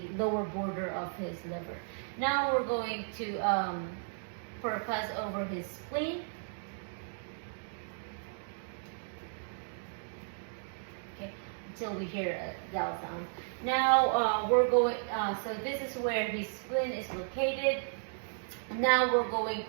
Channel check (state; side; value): silent; left; digital silence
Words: lower border of his liver. Now we're going to percuss over his spleen. Okay, until we hear a dull sound. Now we're going, so this is where his spleen is located. Now we're going